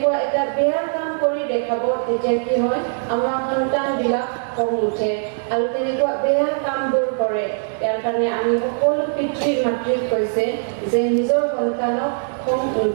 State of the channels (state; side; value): silent; left; digital silence